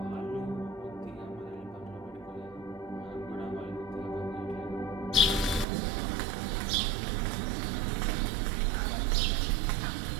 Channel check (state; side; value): drops out; left; at 5.7 s